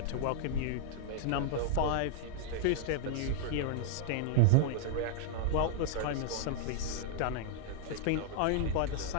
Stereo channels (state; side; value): different; both; correlation -0.01